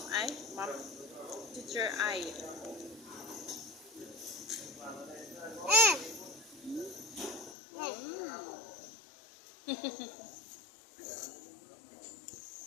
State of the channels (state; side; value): drops out; right; at 7.6 s